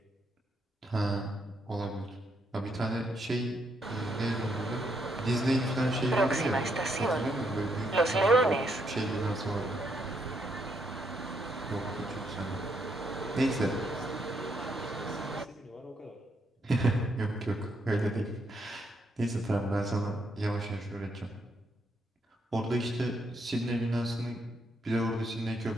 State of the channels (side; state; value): both; normal; correlation 0.76